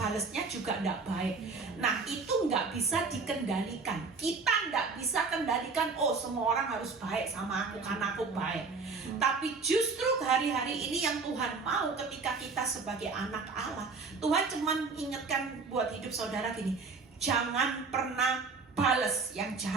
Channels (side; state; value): left; quieter; 4.4 dB